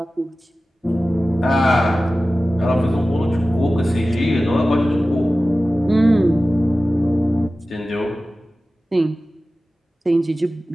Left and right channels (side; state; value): both; normal; correlation 0.95